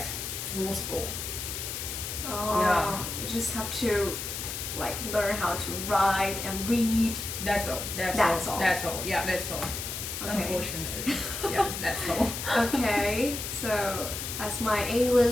full score. You just have to like learn how to write and read. That's all. That's all. Yeah, that's all. Okay. Unfortunately, yeah, that's all. Okay, so as my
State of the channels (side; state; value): left; noise; hiss, 5 dB below the sound